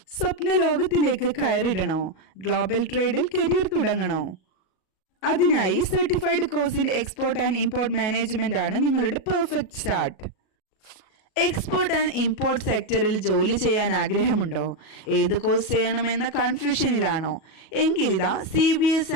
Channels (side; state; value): right; late; 38 ms